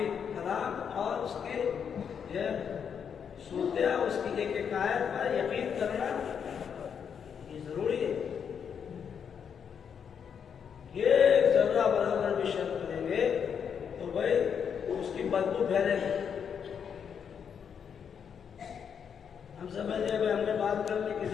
कलाम और उसके सूरत, उसकी एक एक आयत पर यकीन करना ये जरूरी है। एक जर्रा बराबर भी शक करेंगे तो भाई उसकी बदबू फैलेगी। हम समझे भाई हमने बात कर ली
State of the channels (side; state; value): right; quieter; 7.4 dB